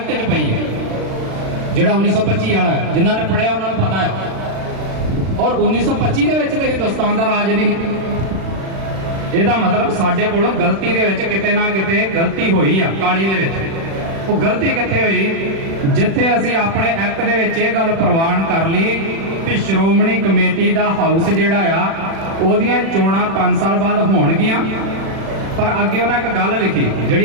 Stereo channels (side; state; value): left; late; 36 ms